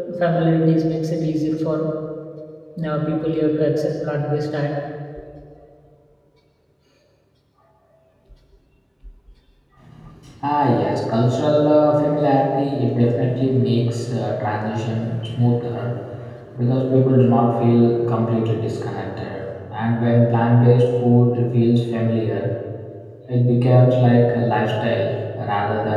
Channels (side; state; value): both; identical; correlation 1.00